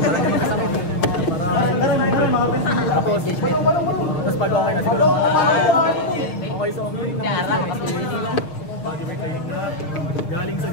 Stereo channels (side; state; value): right; late; 6.5 ms